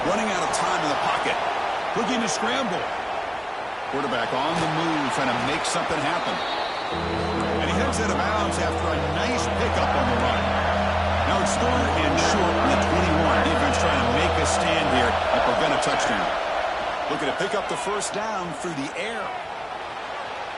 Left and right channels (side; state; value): both; identical; correlation 1.00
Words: Running out of time in the pocket. Looking to scramble. Quarterback on the move, trying to make something happen. And he heads out of bounds after a nice pickup on the run. Now it's third and short in the 21. Defense trying to make a stand here and prevent a touchdown. Looking to pick up the first down through the air.